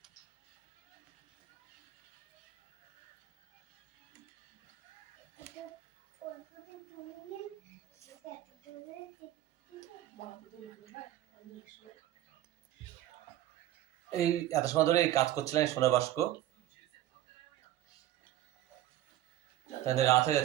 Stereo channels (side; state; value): left; quieter; 13.6 dB